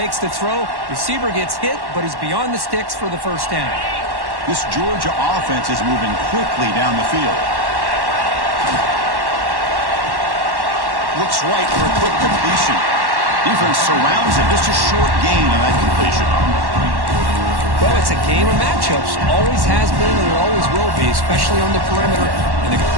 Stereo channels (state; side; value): late; left; 1.1 ms